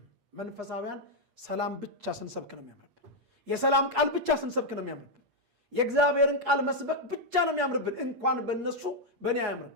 መንፈሳውያን ሰላም ብቻ ስንሰብክ ነው የሚያምርብን። የሰላም ቃል ብቻ ስንሰብክ ነው የሚያምርብን። የእግዚአብሔርን ቃል መስበክ ብቻ ነው የሚያምርብን። እንኳን በእነሱ በእኔ አያምርም።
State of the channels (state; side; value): late; left; 8.4 ms